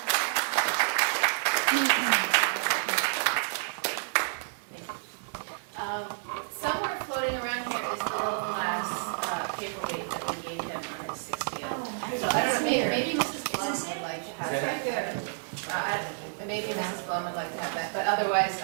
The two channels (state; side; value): silent; left; digital silence